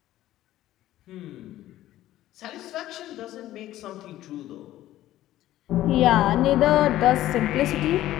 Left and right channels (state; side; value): quieter; right; 14.2 dB